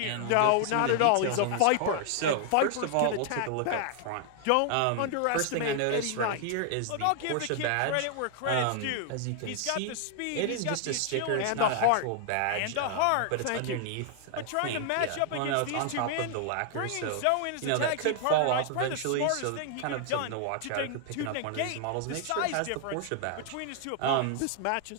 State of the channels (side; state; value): both; different; correlation 0.00